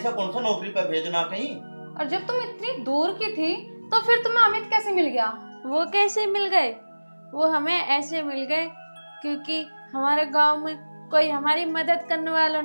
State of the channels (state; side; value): inverted; both; correlation -1.00